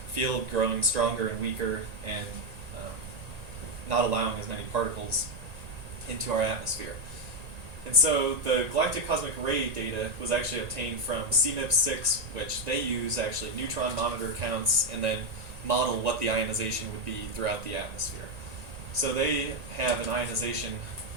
field growing stronger and weaker and not allowing as many particles into our atmosphere. And so the galactic cosmic ray data was actually obtained from CMIP6, which they use actually neutron monitor counts and then model what the ionization would be throughout the atmosphere. So they have an ionization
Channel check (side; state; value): left; late; 1.8 ms